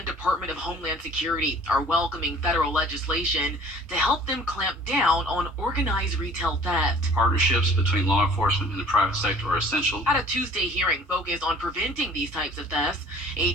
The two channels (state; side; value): normal; both; correlation 0.50